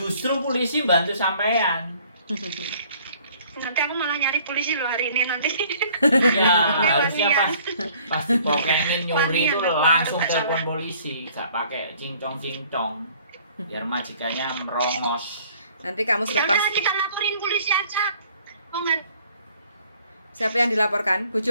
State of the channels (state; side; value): inverted; both; correlation -0.57